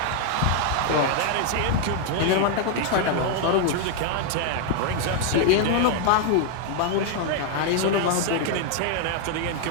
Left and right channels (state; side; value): different; both; correlation 0.00